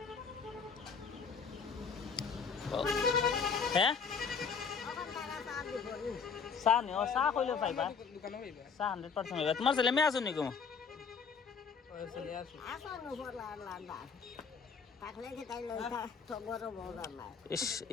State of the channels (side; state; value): right; quieter; 5.8 dB